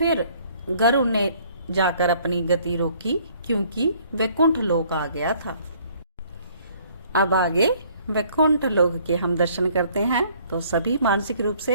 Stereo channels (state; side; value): inverted; both; correlation -0.60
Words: गरुण ने जाकर अपनी गति रोकी, क्योंकि वैकुंठ लोक आ गया था। अब आगे वैकुंठ लोक के हम दर्शन करते हैं, तो सभी मानसिक रूप से